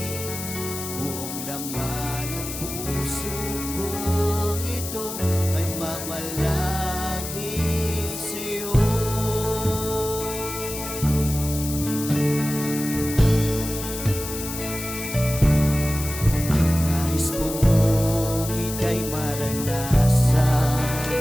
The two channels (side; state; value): left; noise; hiss, 8 dB below the sound